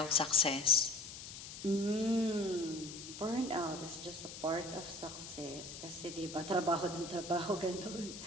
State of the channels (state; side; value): noise; left; hiss, 11 dB below the sound